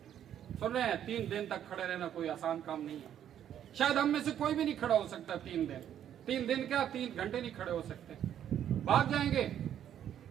سن رہے ہیں، 3 دن تک کھڑے رہنا کوئی آسان کام نہیں ہے. شاید ہم میں سے کوئی بھی نہیں کھڑا ہو سکتا 3 دن. 3 دن کیا 3 گھنٹے نہیں کھڑے ہو سکتے، بھاگ جائیں گے.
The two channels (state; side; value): quieter; left; 10.2 dB